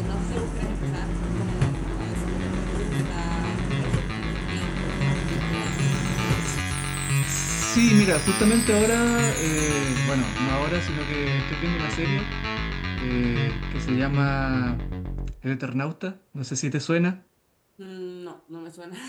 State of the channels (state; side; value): identical; both; correlation 1.00